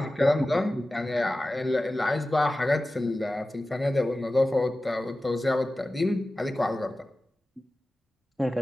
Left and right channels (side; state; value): both; normal; correlation 0.96